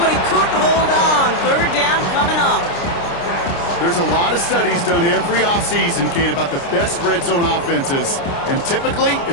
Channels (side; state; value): right; late; 29 ms